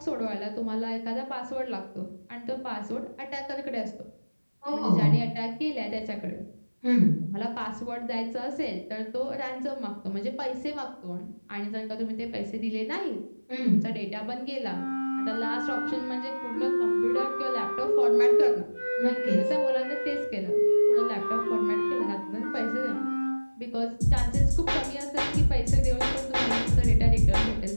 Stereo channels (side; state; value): both; inverted; correlation -1.00